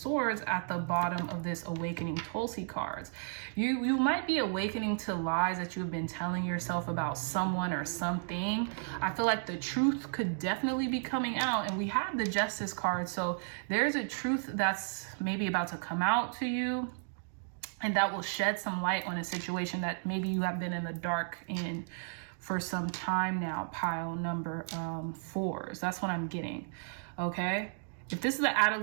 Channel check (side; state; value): left; silent; digital silence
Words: at the bottom of this awakening Tulsi cards. You might be awakening to lies that you've been telling yourself about someone or something. I feel like the truth could definitely be coming out, and we have the justice card. So there's a truth that's maybe about to come out to you, and that will shed some light on a situation that maybe you have been in the dark in for some time now. Pile number 4s. That's what I'm getting. Okay. If this is the